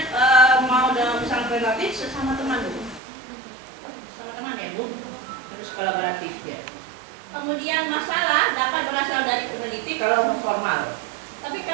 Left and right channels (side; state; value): left; drops out; at 3.0 s